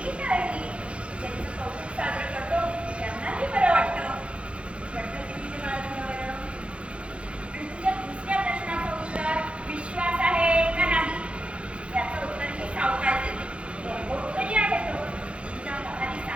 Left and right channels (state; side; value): late; left; 0.059 ms